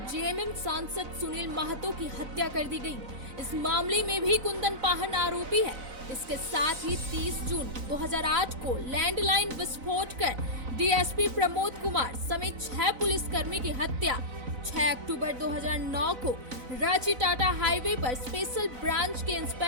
जेएमएम सांसद सुनील महतो की हत्या कर दी गई। इस मामले में भी कुंदन पाहन आरोपी है। इसके साथ ही 30 जून 2008 को लैंडलाइन विस्फोट कर डीएसपी प्रमोद कुमार समेत 6 पुलिसकर्मी की हत्या। 6 अक्टूबर 2009 को रांची टाटा हाईवे पर स्पेशल ब्रांच के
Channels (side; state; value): left; late; 4.0 ms